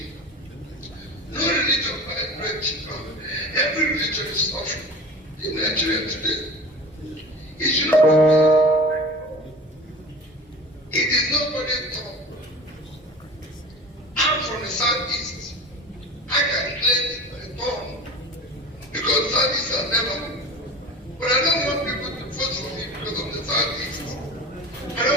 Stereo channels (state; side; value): normal; both; correlation 0.37